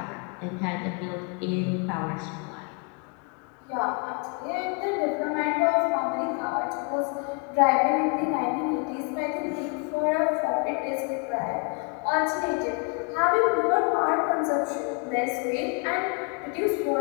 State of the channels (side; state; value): right; quieter; 34.5 dB